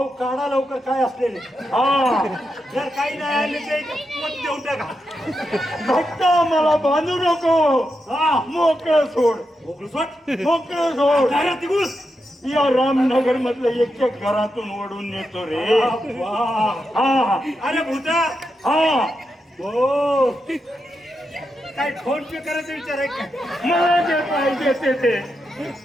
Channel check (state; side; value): normal; both; correlation 0.86